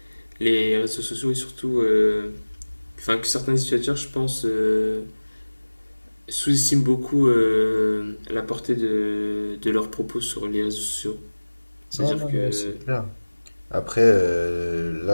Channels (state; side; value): inverted; both; correlation -1.00